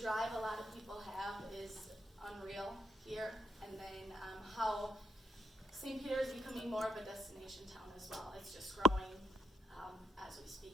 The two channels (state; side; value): normal; both; correlation 0.75